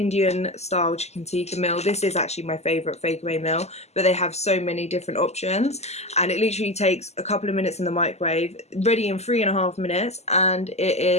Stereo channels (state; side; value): late; right; 0.32 ms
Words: style chicken tikka meal. This is actually my favourite Fake Away meal, but they have so many different options, and it literally takes a couple of minutes in the microwave, ready in 3.5 minutes, and it